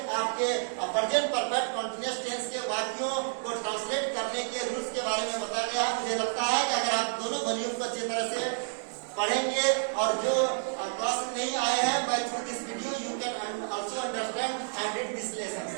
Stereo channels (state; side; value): silent; left; digital silence